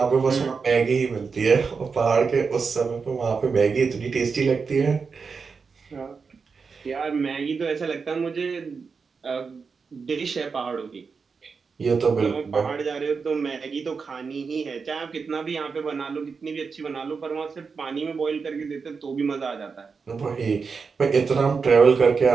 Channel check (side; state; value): left; quieter; 5.2 dB